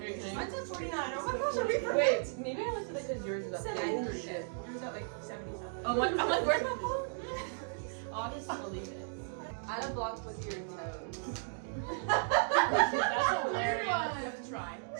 are you kidding? Mine's at 49. Oh my gosh, are we perfect? Wait, maybe I looked at it because yours is up. 70 shit. Yours at like 70 something. Oh my! I'm like, where's my phone? I'll just delete it. Add a block with your toes. That's hilarious. You have to try.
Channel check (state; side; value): silent; left; digital silence